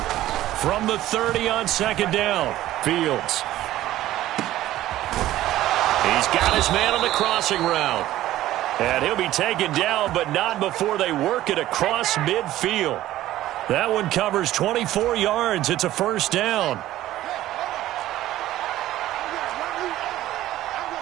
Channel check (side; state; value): left; quieter; 14.5 dB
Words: From the 30 on second down, Fields. He's got his man on the crossing route. And he'll be taken down, but not before they work it across midfield. That one covers 24 yards. It's a first down.